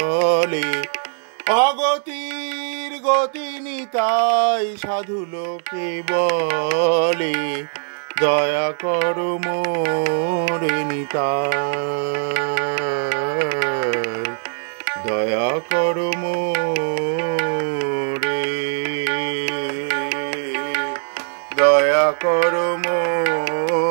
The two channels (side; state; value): left; silent; digital silence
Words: অগতির গতি নিতাই সাধু লোকে বলে, দয়া করো মোরে নিতাই, দয়া করো মোরে, দয়া করো